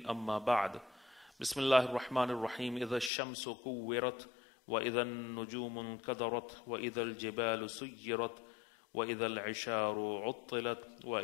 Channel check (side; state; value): right; drops out; at 3.1 s